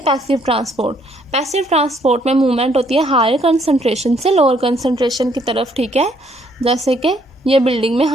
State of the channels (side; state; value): both; normal; correlation 0.68